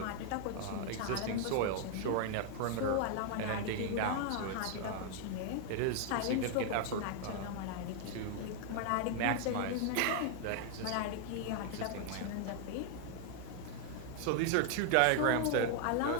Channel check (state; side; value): different; both; correlation 0.00